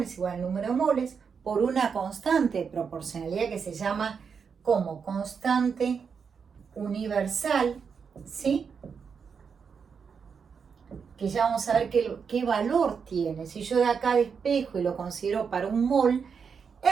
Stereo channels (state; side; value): quieter; left; 6.2 dB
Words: es igual al número de moles por una constante de proporcionalidad que se llama como constante universal, ¿sí?, que ya vamos a ver qué valor tiene. Si yo de acá despejo y lo considero para un mol,